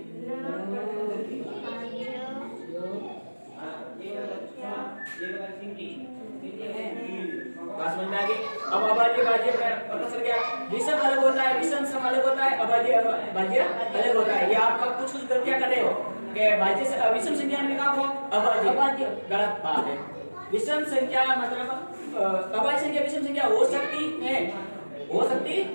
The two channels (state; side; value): inverted; both; correlation -1.00